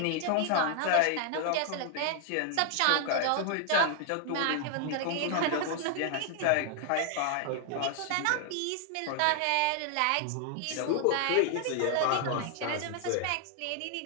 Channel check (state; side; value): different; both; correlation 0.00